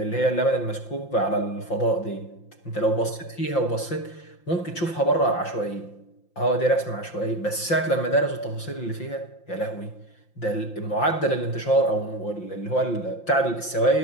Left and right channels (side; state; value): right; late; 5.8 ms